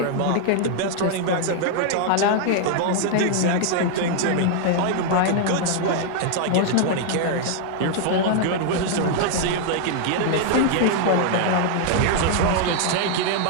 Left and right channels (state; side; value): different; both; correlation 0.00